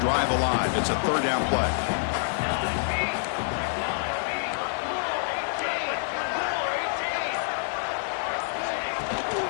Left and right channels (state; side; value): silent; right; 60 dB below the other